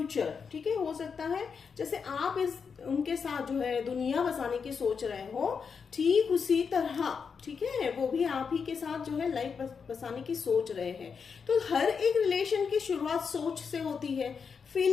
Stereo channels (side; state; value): right; quieter; 6.0 dB